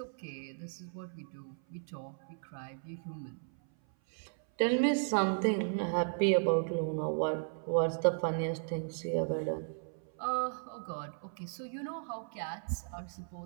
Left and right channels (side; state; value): left; silent; 54 dB below the other